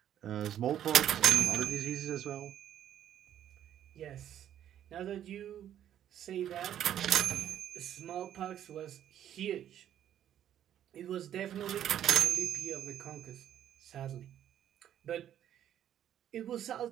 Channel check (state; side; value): quieter; left; 10.7 dB